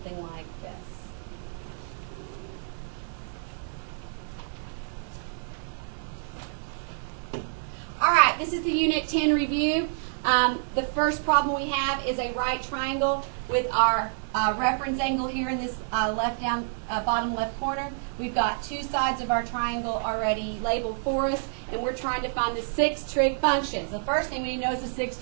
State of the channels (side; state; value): left; silent; digital silence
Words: like this. All right, this is the Unit 10 review. The first problem we have is a right triangle with our reference angle here in this bottom left corner. We've got 2 sides of our triangle already labeled for us, and we're trying to find the 6 trig functions. The first thing we need to know is the 6